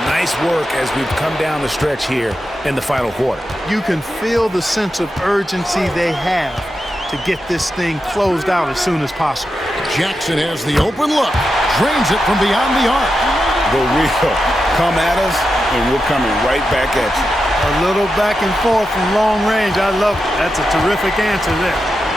nice work as we've come down the stretch here in the final quarter. You can feel the sense of urgency they have to get this thing closed out as soon as possible. Jackson has the open look. Drains it from beyond the arc. The real come at us, and we're coming right back at you. A little back and forth from long range. I love it. That's a terrific answer there.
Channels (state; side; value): normal; both; correlation 0.88